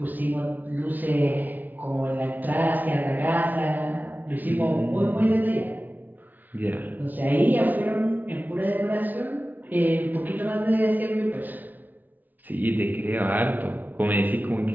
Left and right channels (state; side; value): late; left; 0.083 ms